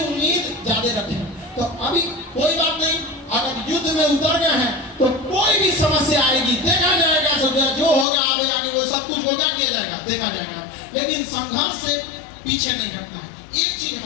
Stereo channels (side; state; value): right; drops out; at 8.1 s